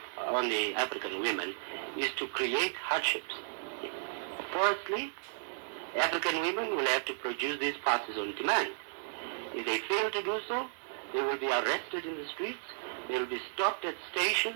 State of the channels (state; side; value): silent; left; digital silence